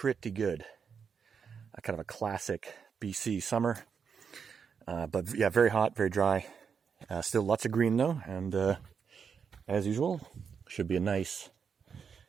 good. Kind of a classic BC summer. But yeah, very hot, very dry. Still lots of green though, and as usual, should be a nice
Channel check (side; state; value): left; quieter; 6.5 dB